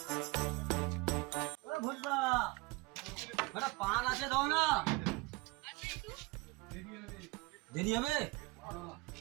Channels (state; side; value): quieter; left; 24.5 dB